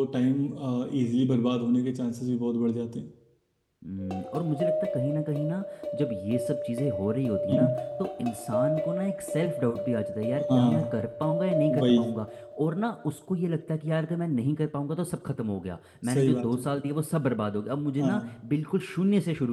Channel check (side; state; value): both; identical; correlation 1.00